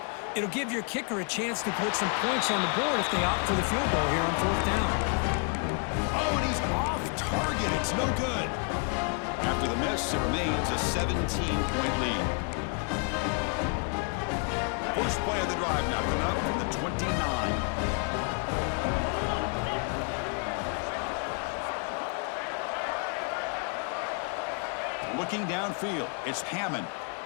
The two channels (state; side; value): quieter; right; 38.1 dB